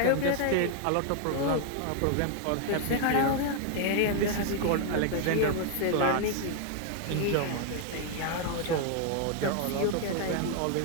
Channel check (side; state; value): both; different; correlation 0.00